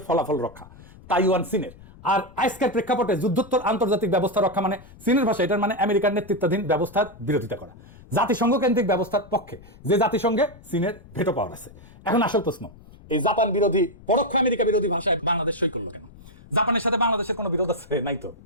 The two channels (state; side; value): noise; left; rumble, 21 dB below the sound